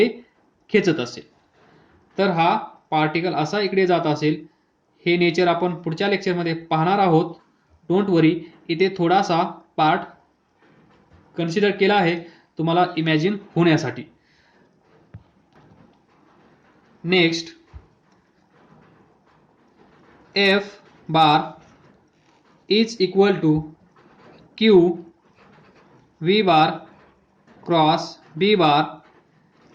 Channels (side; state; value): both; identical; correlation 1.00